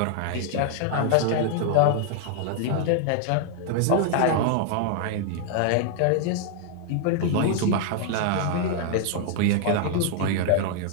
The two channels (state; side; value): different; both; correlation 0.00